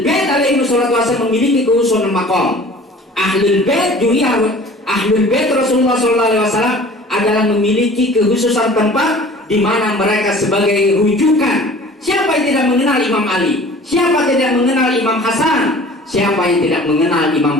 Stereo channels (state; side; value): normal; both; correlation 0.46